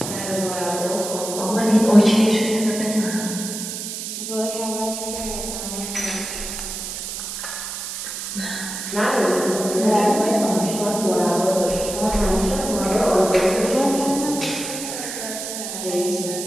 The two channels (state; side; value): noise; right; hiss, 6 dB below the sound